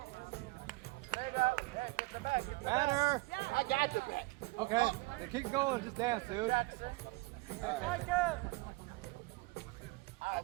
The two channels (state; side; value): quieter; left; 22.7 dB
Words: Matter. I got the back. Okay, then keep going. Just dance, dude.